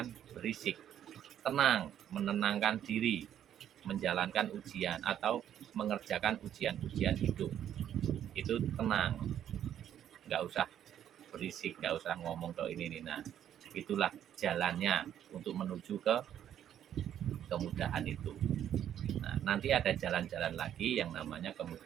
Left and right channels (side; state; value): left; quieter; 10.3 dB